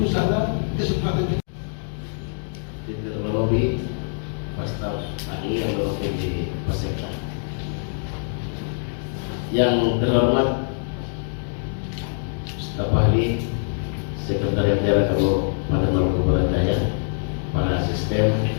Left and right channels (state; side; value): silent; right; digital silence